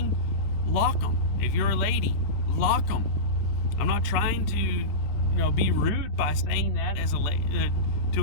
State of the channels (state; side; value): late; right; 14 ms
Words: lock them. If you're a lady, lock them. I'm not trying to, be rude by saying that as